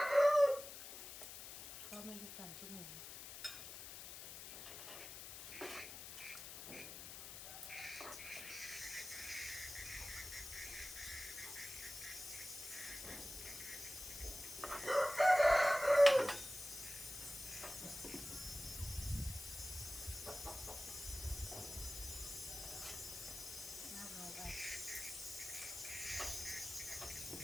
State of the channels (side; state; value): left; noise; hiss, 10 dB below the sound